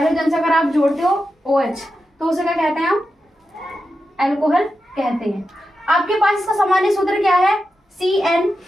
से अगर आप जोड़ते हो OH, तो उसे क्या कहते हैं? हम अल्कोहल कहते हैं। आपके पास इसका सामान्य सूत्र क्या है?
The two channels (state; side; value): normal; both; correlation 0.89